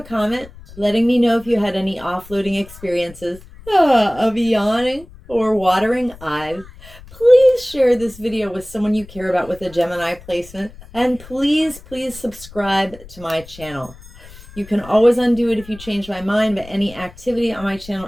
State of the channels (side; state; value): left; noise; rumble, 19 dB below the sound